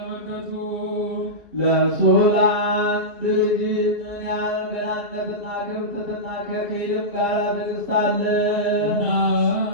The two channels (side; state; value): left; late; 2.3 ms